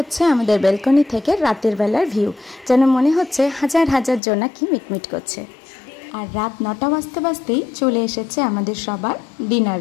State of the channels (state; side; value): drops out; right; at 4.2 s